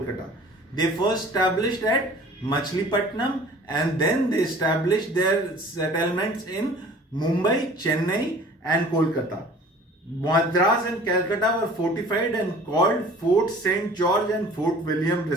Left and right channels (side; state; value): both; normal; correlation 0.47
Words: They first established at Machilipatnam and then they established their settlements in Mumbai, Chennai and Kolkata. Madras and Calcutta were fortified and called Fort St. George and Fort William